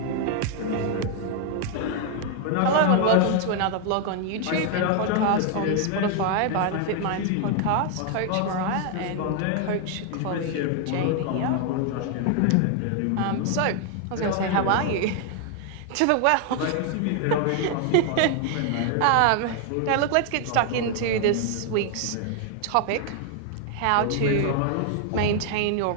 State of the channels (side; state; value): both; different; correlation 0.00